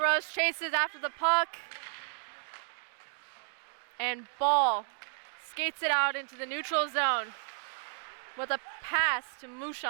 chases after the puck. And Ball skates it out into the neutral zone with a pass to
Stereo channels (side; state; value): left; silent; 56 dB below the other